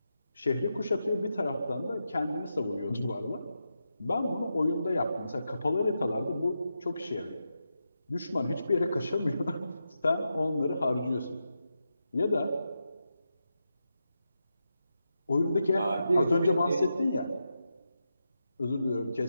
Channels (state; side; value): inverted; both; correlation -0.87